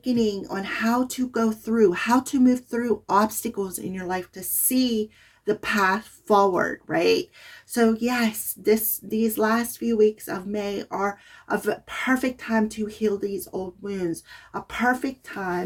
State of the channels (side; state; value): both; identical; correlation 1.00